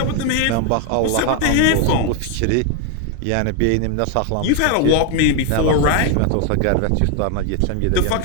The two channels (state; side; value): different; both; correlation 0.01